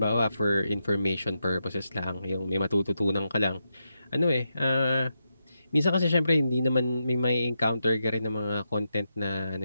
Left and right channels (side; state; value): both; inverted; correlation -0.85